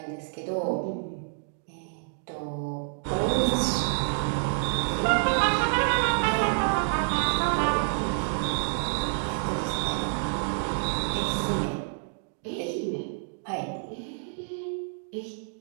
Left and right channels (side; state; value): left; silent; digital silence